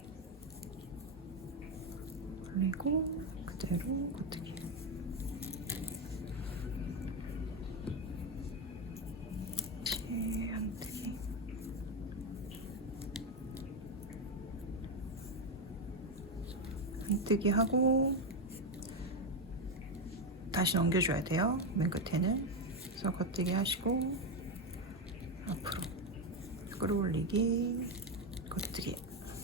그리고 그대로 겉뜨기. 한뜨기. 한뜨기 하고 다시 넘겨줘야 돼요. 맨 끝에는. 그래서 겉뜨기 하시고 앞으로 끌어올리기, 겉뜨기.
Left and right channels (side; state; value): both; normal; correlation 0.08